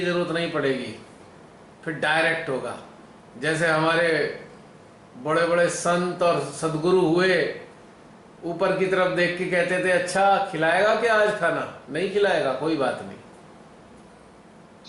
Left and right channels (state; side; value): identical; both; correlation 1.00